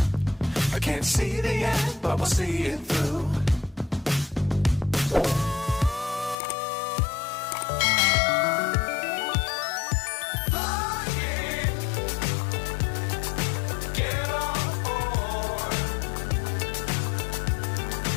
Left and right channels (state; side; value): drops out; right; at 6.4 s